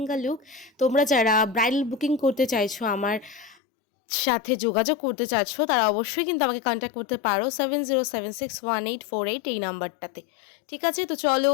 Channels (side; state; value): right; drops out; at 3.6 s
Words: লুক। তোমরা যারা ব্রাইডাল বুকিং করতে চাইছো, আমার সাথে যোগাযোগ করতে চাচ্ছো, তারা অবশ্যই কিন্তু আমাকে কন্ট্যাক্ট করতে পারো 70761848 এই নাম্বারটাতে। ঠিক আছে, তো চলো